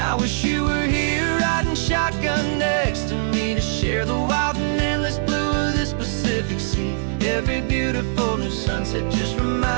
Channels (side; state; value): left; silent; digital silence